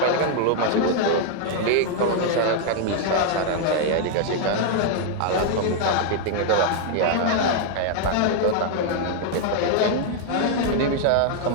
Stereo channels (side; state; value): both; different; correlation 0.00